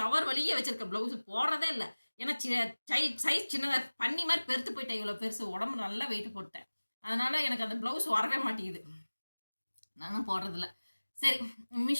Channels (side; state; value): both; inverted; correlation -1.00